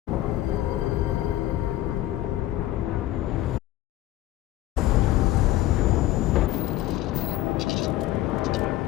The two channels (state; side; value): quieter; right; 15.1 dB